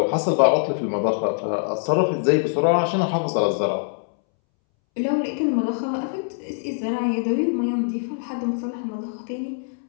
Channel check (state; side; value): silent; right; 63 dB below the other